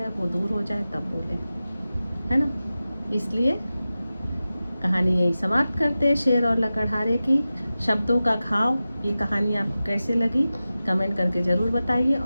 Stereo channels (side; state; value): both; inverted; correlation -0.95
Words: वो दूर हो जाए, तब बोलें, है ना। इसलिए कहानी यही समाप्त करते हैं, शेर और लकड़हारे की, शब्दों का घाव। ये कहानी आपको कैसे लगी कमेंट करके ज़रूर बताइए